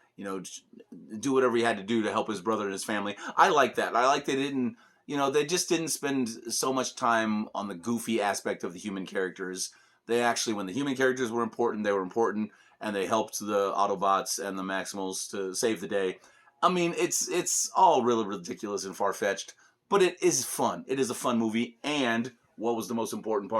do whatever he had to do to help his brother and his family. I like that. I like they didn't. They just didn't spend so much time on the goofy aspect of the human characters. They actually, when the human characters were important, they were important, and they helped the Autobots and the Maximals to save the day. I mean, it's all really ridiculous and far-fetched, but it is fun. It is a fun movie, and what was the most important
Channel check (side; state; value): both; identical; correlation 1.00